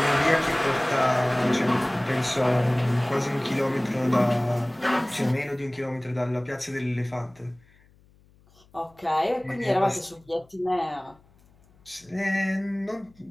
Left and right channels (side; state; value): left; noise; hum, 30 dB below the sound